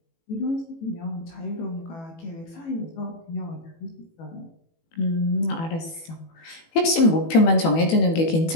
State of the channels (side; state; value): right; late; 18 ms